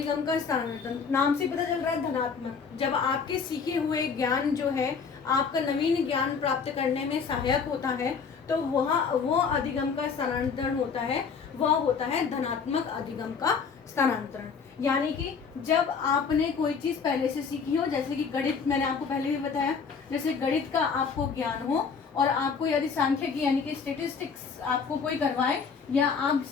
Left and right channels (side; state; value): right; quieter; 5.8 dB